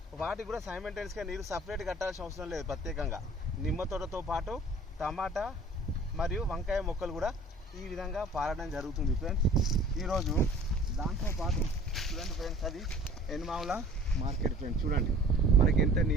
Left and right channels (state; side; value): normal; both; correlation 0.49